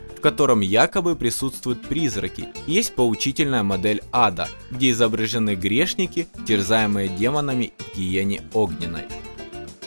в котором якобы присутствуют призраки. Есть поучительная модель ада, где изображены грешники, терзаемые демонами в гиене огненной.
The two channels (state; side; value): inverted; both; correlation -1.00